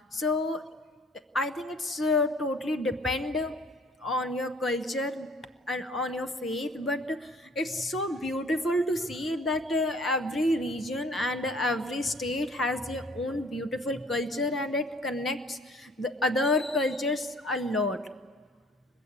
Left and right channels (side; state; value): both; normal; correlation 0.54